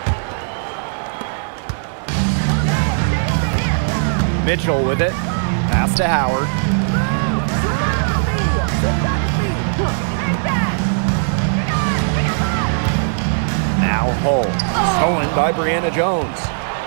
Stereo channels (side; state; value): left; silent; digital silence